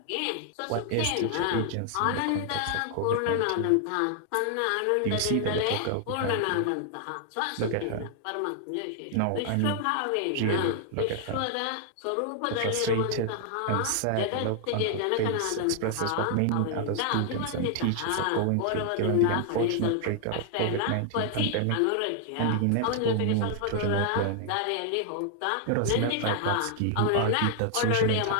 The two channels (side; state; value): both; different; correlation 0.00